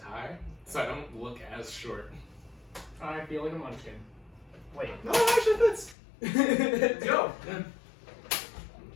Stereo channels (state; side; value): drops out; right; at 6.0 s